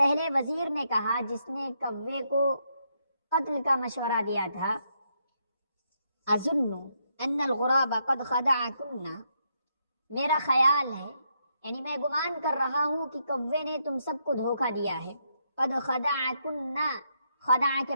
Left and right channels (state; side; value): inverted; both; correlation -0.78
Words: وزیر نے کہا جس نے کوے کو قتل کا مشورہ دیا تھا، اظن ان الغراب قد خدعکن، میرا خیال ہے یعنی میں گمان کر رہا ہوں کہ کوے نے تم سب کو دھوکہ دیا ہے. قد خدعکن، خدع کے